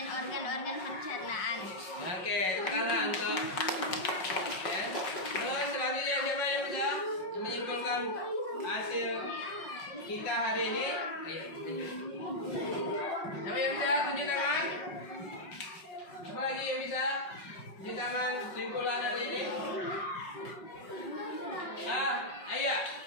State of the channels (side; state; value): right; late; 5.5 ms